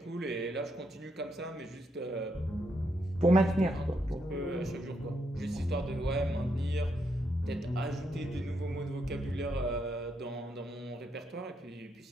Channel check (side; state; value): both; normal; correlation 0.79